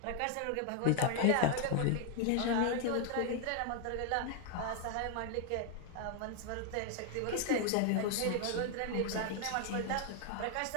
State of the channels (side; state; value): both; different; correlation 0.01